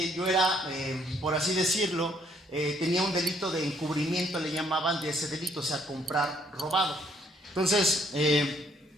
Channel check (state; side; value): normal; both; correlation 0.67